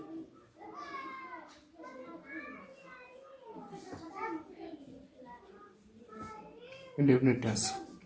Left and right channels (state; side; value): identical; both; correlation 1.00